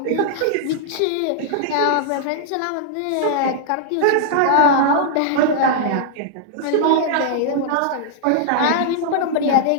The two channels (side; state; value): both; different; correlation -0.01